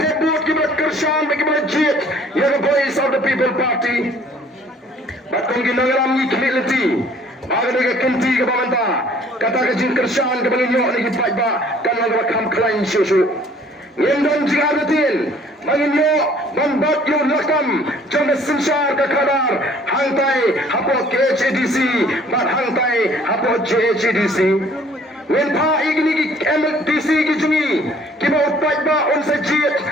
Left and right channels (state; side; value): normal; both; correlation 0.56